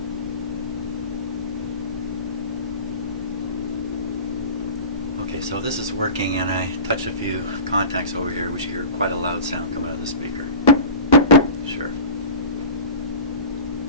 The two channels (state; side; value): inverted; both; correlation -0.35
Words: Okay, so this is working, and I touch a few contacts over here. We should hear quite a loud sound come out of the speaker. Sure.